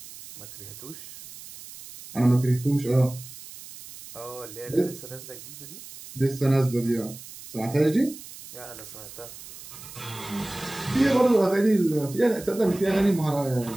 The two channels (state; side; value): noise; right; hiss, 15 dB below the sound